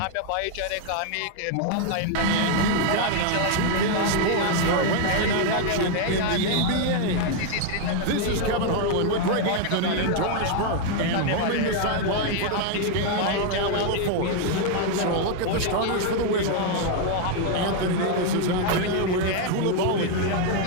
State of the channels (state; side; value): different; both; correlation 0.00